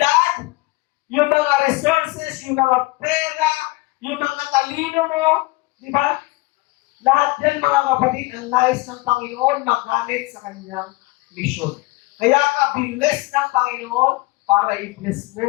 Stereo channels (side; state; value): right; quieter; 22.4 dB